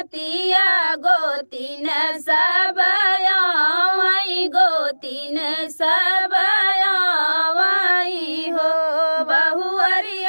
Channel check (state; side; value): inverted; both; correlation -1.00